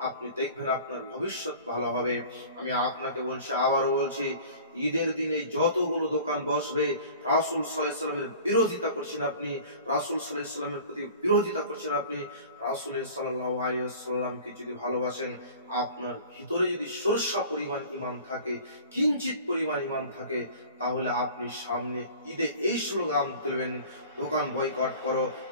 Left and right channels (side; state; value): both; inverted; correlation -0.43